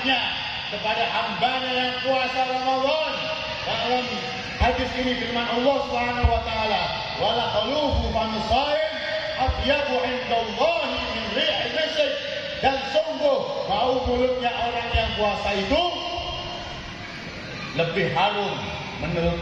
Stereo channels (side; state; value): both; identical; correlation 1.00